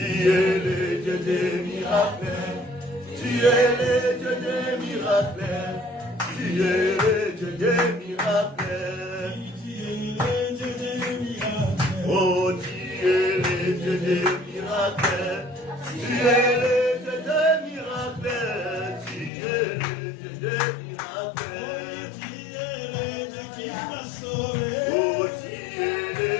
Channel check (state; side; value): drops out; right; at 19.3 s